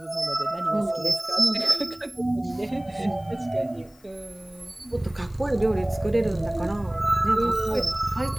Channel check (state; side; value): noise; left; hiss, 29 dB below the sound